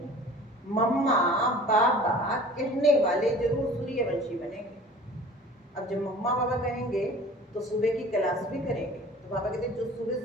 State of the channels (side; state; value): both; normal; correlation 0.44